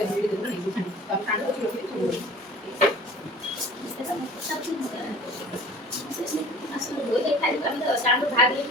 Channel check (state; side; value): normal; both; correlation 0.44